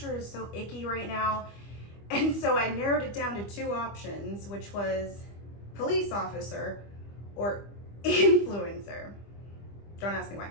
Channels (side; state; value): right; late; 25 ms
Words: is so icky right now. And so I narrowed it down to two options, which was police officer or influencer. Don't ask me why.